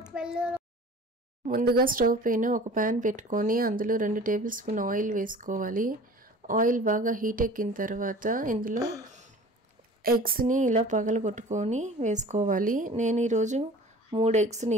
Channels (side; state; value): both; normal; correlation 0.43